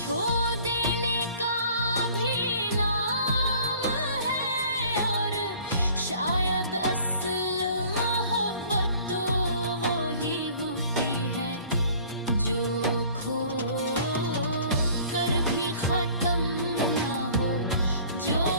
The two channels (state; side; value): inverted; both; correlation -0.51